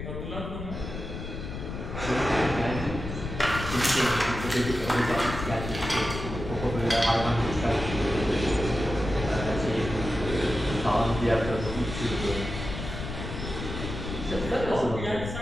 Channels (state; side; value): noise; left; rumble, 7 dB below the sound